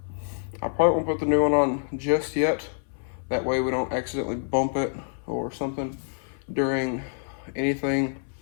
probably won't put the new one on just yet. That way we don't accidentally bump it or something during anything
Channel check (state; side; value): silent; right; 60 dB below the other